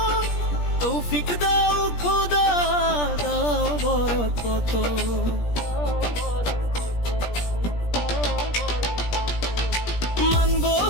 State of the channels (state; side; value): late; right; 17 ms